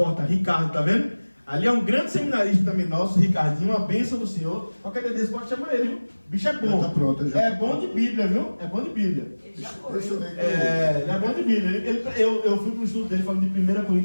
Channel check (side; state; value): both; inverted; correlation -1.00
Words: Ricardo, tá vendo? Ali é um grande seminarista também nosso, Ricardinho, uma bênção do Senhor. Qualquer dia desse pode chamar ele, viu? O bicho é bom. Já tá pronto, já. É bom de Bíblia, viu? É bom de Bíblia. Ele já foi. Deixa eu ver. Ele é bom de Bíblia. Eu fui para o estudo dele falando de 1